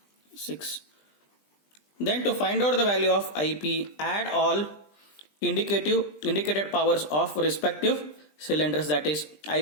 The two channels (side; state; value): right; late; 20 ms